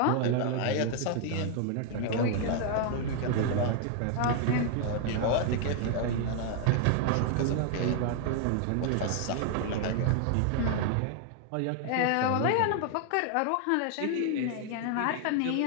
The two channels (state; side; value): different; both; correlation 0.00